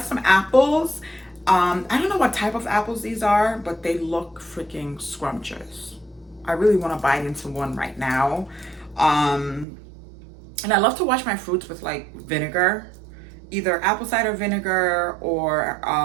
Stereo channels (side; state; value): left; drops out; at 9.7 s